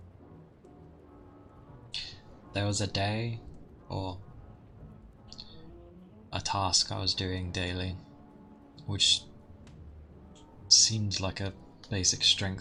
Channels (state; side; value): identical; both; correlation 1.00